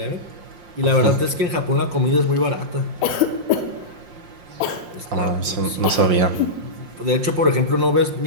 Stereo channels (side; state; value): left; late; 5.6 ms